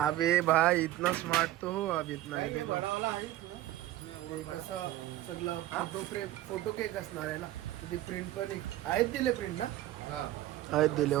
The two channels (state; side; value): quieter; left; 14.8 dB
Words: भाई इतना स्मार्ट तो हो अब इतना है देखो. कसं सगळं फोटो केक असणार आहे ना. तिथे प्रिंट पण आहेत दिले प्रिंट ना. आहेत दिले.